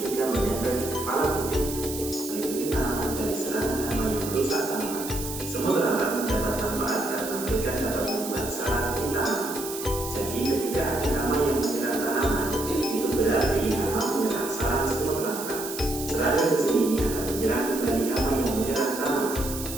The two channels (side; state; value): right; noise; hiss, 8 dB below the sound